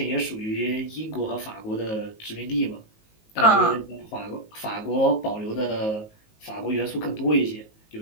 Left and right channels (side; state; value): right; late; 19 ms